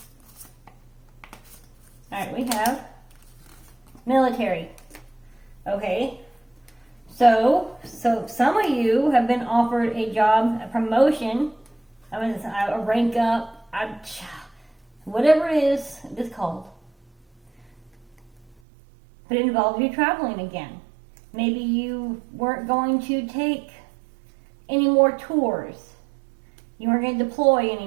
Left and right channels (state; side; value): drops out; left; at 18.6 s